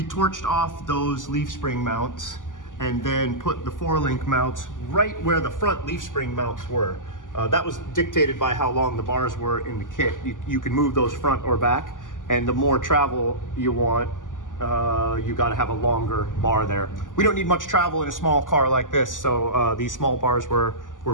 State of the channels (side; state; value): right; late; 0.88 ms